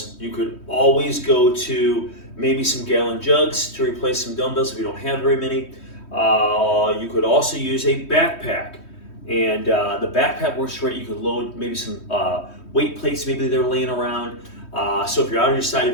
you could always go to maybe some gallon jugs to replace some dumbbells if you don't have very many. You could also use a backpack, and the backpack works great. You could load maybe some weight plates, maybe they're laying around. So if you're out on your side of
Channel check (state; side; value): late; right; 3.2 ms